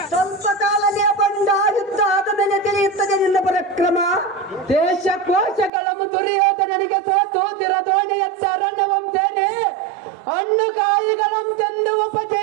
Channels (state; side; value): drops out; left; at 5.7 s